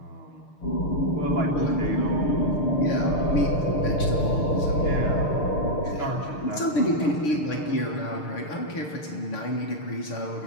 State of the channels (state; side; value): late; right; 6.6 ms